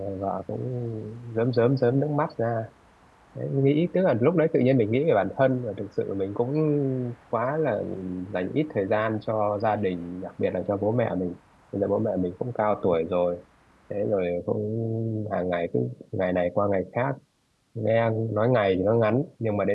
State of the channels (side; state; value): both; identical; correlation 1.00